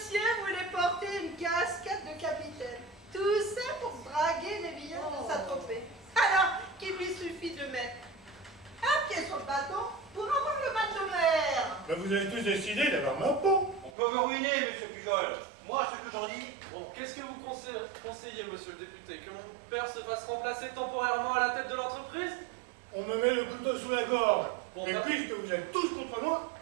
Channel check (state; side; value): drops out; left; at 13.9 s